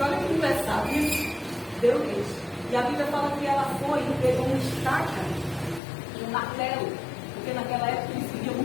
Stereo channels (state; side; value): drops out; right; at 5.8 s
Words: olha que engraçado isso. Deu leite. E a Bíblia fala que ela foi e pegou uma estaca, um martelo. Porque naquela época eles viviam